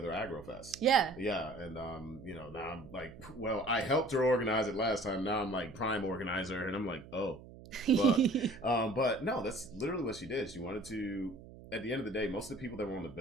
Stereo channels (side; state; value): right; noise; hum, 17 dB below the sound